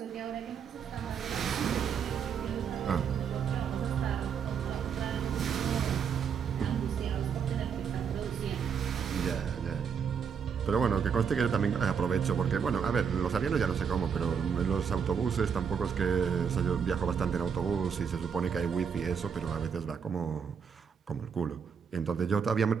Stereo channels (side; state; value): left; quieter; 6.9 dB